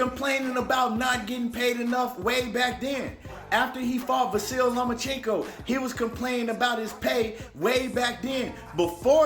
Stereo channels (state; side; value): identical; both; correlation 1.00